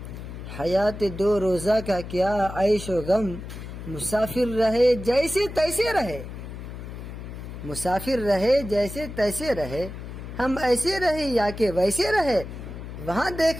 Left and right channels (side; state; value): left; noise; hum, 10 dB below the sound